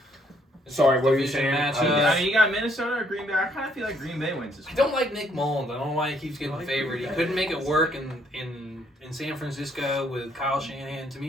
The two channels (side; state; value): both; normal; correlation 0.68